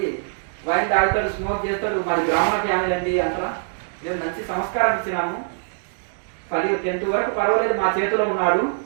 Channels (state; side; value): silent; left; digital silence